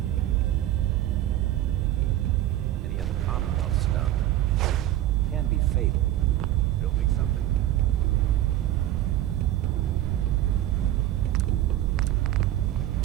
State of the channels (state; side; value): quieter; left; 13.6 dB